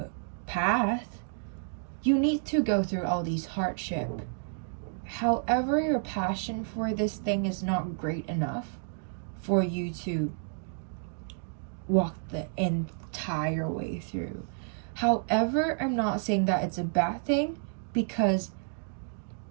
path, you need to go through all these hardship. However, your passion for this thing is not great enough for you to walk the entire way through. However, I'm not saying that it's a bad thing, because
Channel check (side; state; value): left; silent; digital silence